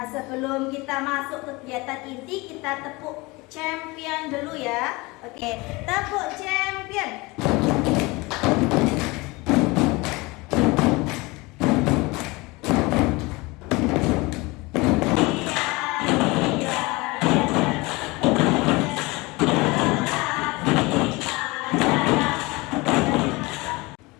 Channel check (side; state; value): right; quieter; 23.7 dB